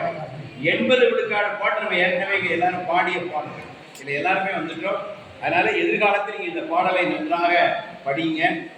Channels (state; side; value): identical; both; correlation 1.00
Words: 80 விழுக்காடு பாட்டு நம்ம ஏற்கனவே எல்லாரும் பாடிய பாடல். இதில் எல்லாருமே வந்துட்டோம். அதனால எதிர்காலத்தில் நீங்கள் இந்த பாடலை நன்றாக படிங்க.